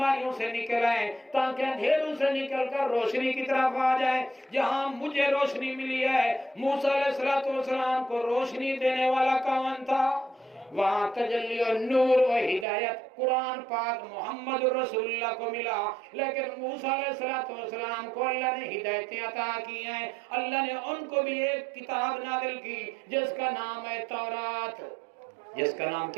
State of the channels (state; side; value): drops out; left; at 12.7 s